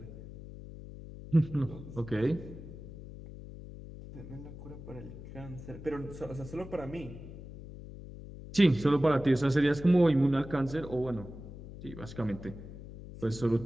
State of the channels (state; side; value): noise; left; hum, 13 dB below the sound